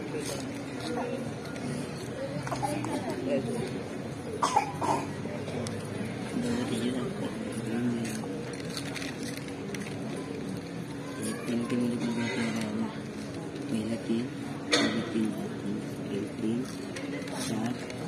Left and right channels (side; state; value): both; identical; correlation 1.00